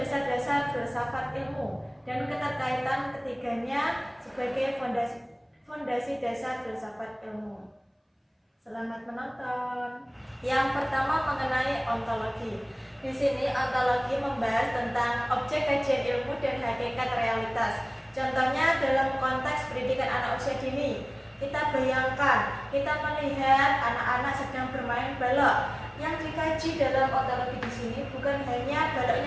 filsafat ilmu dan keterkaitan ketiganya sebagai fondasi dasar filsafat ilmu. Selamat menonton. Yang pertama mengenai ontologi. Di sini ontologi membahas tentang objek kajian ilmu dan hakikat realitas. Contohnya dalam konteks pendidikan anak usia dini. Kita bayangkan, kita melihat anak-anak sedang bermain balok. Yang dikaji dalam ontologi di sini bukan hanya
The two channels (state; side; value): identical; both; correlation 1.00